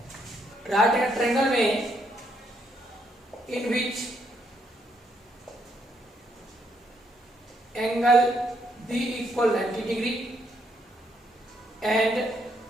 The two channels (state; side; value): normal; both; correlation 0.74